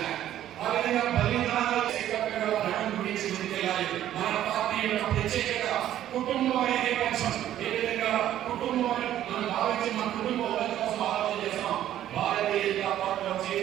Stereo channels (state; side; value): quieter; left; 12.1 dB